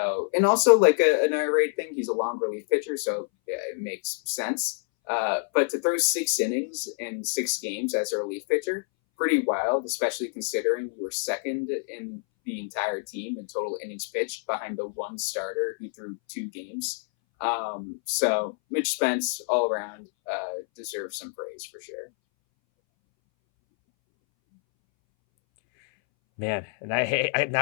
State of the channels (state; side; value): silent; right; 60 dB below the other